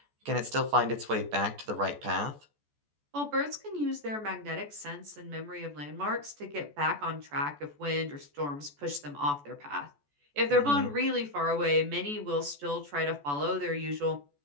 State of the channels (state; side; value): late; left; 14 ms